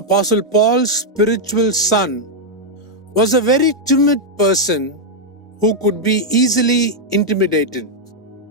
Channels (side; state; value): both; normal; correlation -0.02